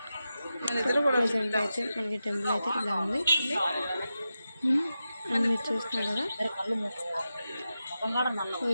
ప్రజెంట్ అయితే మనకి టెంపుల్ అయితే ఇలా ఉంది అని మీరు చూస్తున్నారు కదా.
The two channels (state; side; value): inverted; both; correlation -0.91